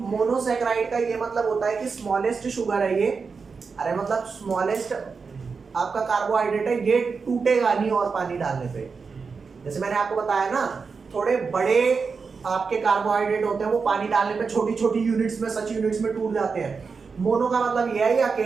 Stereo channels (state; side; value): quieter; left; 5.1 dB